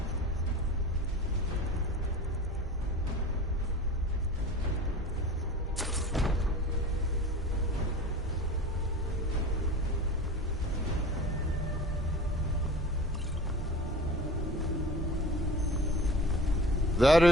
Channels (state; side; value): normal; both; correlation 0.39